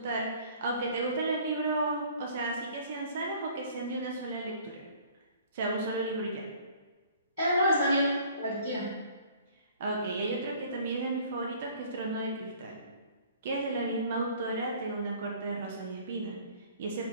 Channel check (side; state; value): both; inverted; correlation -0.53